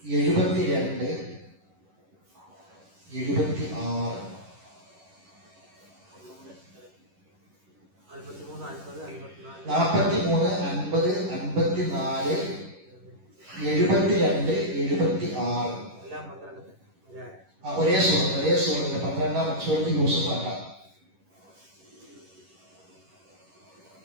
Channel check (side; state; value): left; late; 11 ms